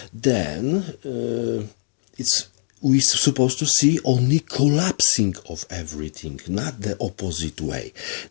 then we're supposed to see only collapsing of everything, not the opposite way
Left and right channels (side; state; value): right; silent; digital silence